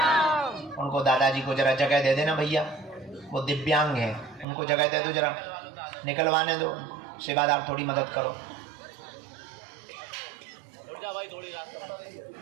उनको दादाजी को जरा जगह दे देना भैया, वो दिव्यांग है, उनको जगह दे दो, जरा निकलवाने दो। सेवादार थोड़ी मदद करो।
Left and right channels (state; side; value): drops out; left; at 4.5 s